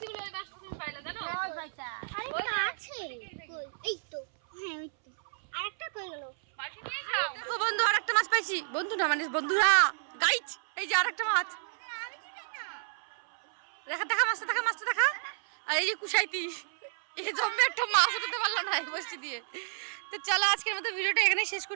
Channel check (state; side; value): silent; left; 57 dB below the other